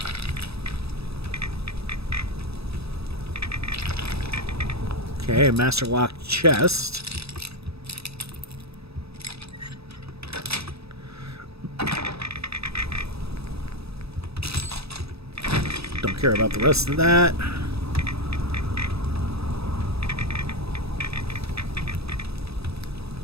Okay, Master Lock Chest. Don't care about the rest of that.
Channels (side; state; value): left; late; 0.78 ms